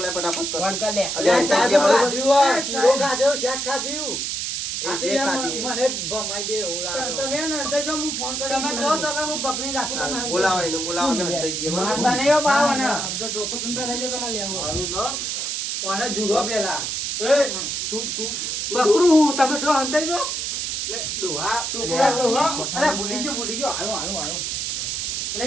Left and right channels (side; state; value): right; noise; hiss, 2 dB below the sound